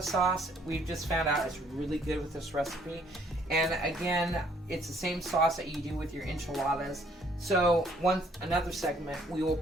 sauce. We've just found out it's really good with this recipe. And again, it's the same sauce that you do with your enchiladas. So another segment, we will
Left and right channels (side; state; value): both; normal; correlation 0.64